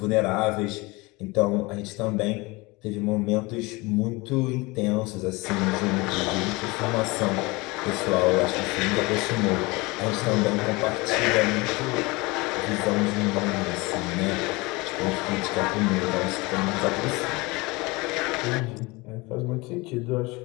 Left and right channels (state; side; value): quieter; right; 24.2 dB